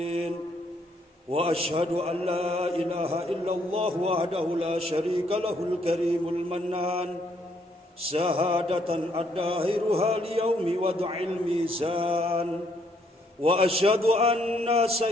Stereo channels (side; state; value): both; normal; correlation 0.70